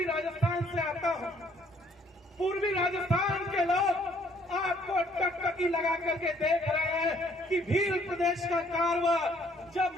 राजस्थान से आता हूं। पूर्वी राजस्थान के लोग आपको टकटकी लगा करके देख रहे हैं कि भील प्रदेश का कारवा जब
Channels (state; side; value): normal; both; correlation 0.63